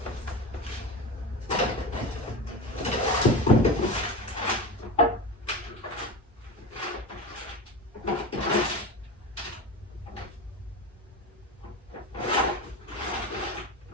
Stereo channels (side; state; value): both; normal; correlation 0.25